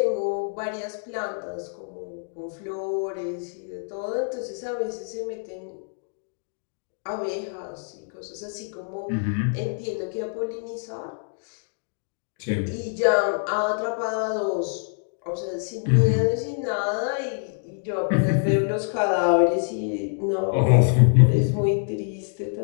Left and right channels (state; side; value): silent; right; digital silence